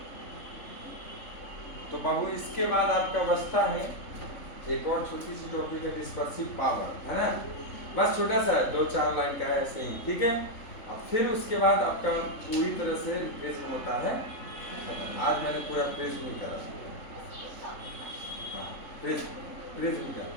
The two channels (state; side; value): late; right; 3.6 ms